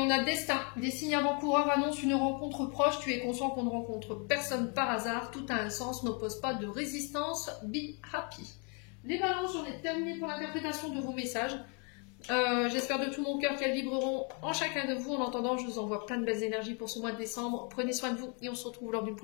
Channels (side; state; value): right; quieter; 36.3 dB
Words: a destin, des signes avant-coureurs annoncent une rencontre proche, tu es conscient qu'on ne rencontre personne par hasard, tout a un sens, n'oppose pas de résistance, be happy. Les balances, j'en ai terminé pour l'interprétation de vos messages. J'espère de tout mon cœur qu'elles vibreront en chacun de vous. En attendant, je vous envoie plein de belles énergies pour ce mois de décembre. Prenez soin de vous et on se retrouve lors d'une